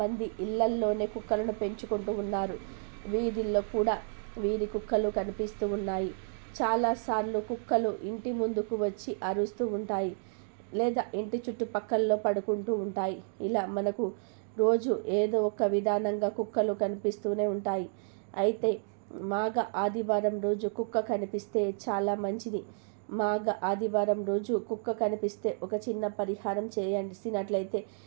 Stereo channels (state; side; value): silent; left; 57 dB below the other